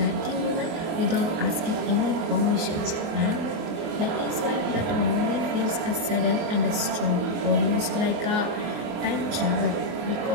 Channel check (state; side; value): late; left; 24 ms